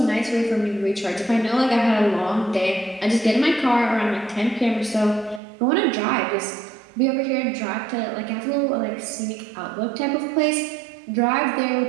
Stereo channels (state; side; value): drops out; left; at 5.4 s